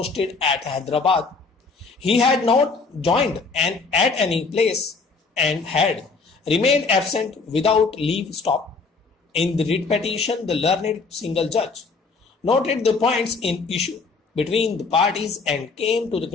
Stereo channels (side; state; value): right; quieter; 4.4 dB